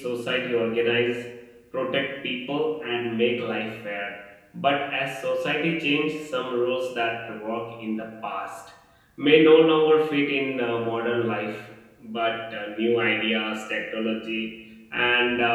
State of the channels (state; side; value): identical; both; correlation 1.00